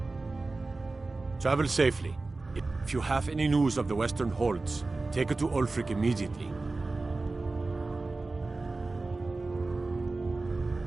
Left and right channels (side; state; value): left; quieter; 3.4 dB